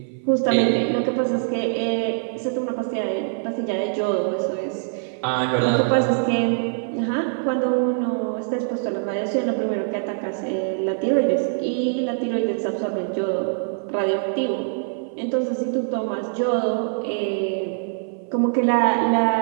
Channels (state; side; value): silent; left; 57 dB below the other